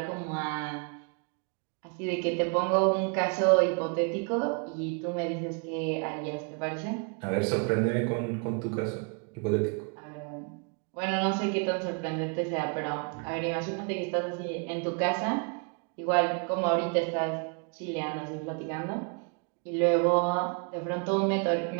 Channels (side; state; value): left; quieter; 36.1 dB